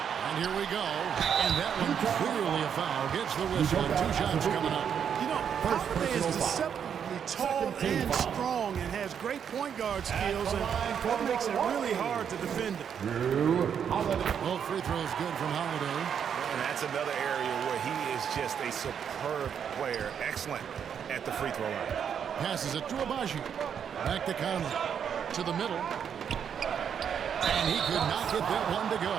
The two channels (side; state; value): left; quieter; 7.9 dB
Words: And here we go. And that one clearly a foul. Gets the whistle and 2 shots coming up. You know, Holiday is deceptively tall and strong and has great point guard skills, and that makes it really hard to defend him. Both free throws good from Holiday. And that's another area where he is just a superb player. Excellent at the free throw line. Passes it to Abaji. Back to Conley. To the middle. And he could not get that one to go.